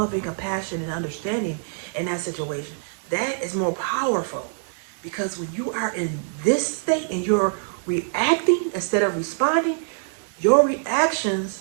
and compassion and understanding in that situation. That is more powerful, because when you are in this state and you're reacting instead of responding, your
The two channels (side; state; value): left; silent; 57 dB below the other